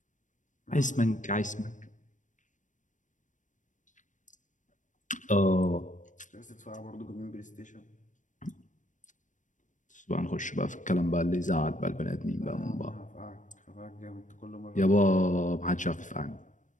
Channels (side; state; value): right; late; 0.37 ms